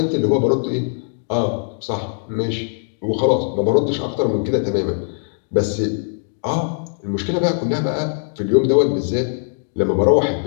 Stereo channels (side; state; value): right; silent; digital silence